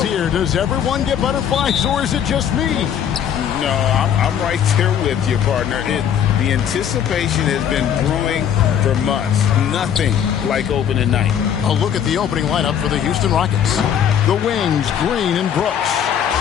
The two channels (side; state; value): right; quieter; 8.9 dB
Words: here. Does everyone get butterflies, or is it just me? No, I'm right there with you, partner. The anticipation has been brewing for months. Nothing like opening night. A look at the opening lineup for the Houston Rockets. The wings, Green and Brooks.